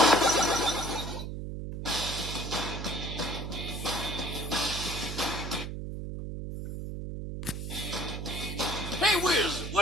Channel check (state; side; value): noise; right; hum, 6 dB below the sound